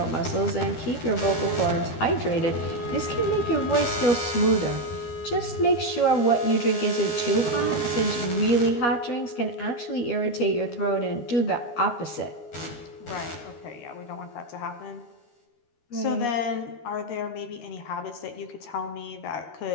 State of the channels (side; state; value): right; late; 13 ms